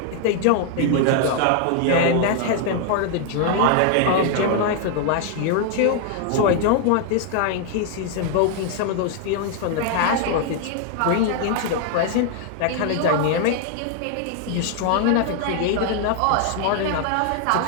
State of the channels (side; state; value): both; different; correlation 0.00